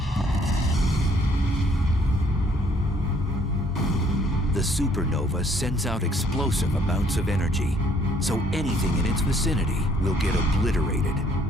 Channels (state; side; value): normal; both; correlation 0.63